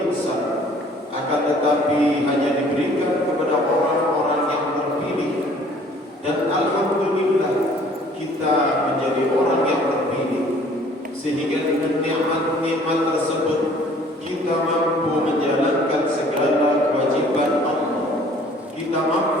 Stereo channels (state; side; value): normal; both; correlation 0.55